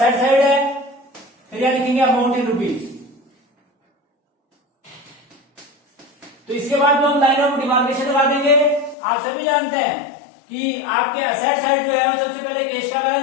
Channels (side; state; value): right; drops out; at 9.0 s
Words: साइड है, फिर यहां लिखेंगे अमाउंट इन रुपीज। तो इसके बाद में हम लाइन ऑफ डिमार्केशन लगा देंगे। आप सभी जानते हैं कि आपके असेट साइड जो है वो सबसे पहले कैश का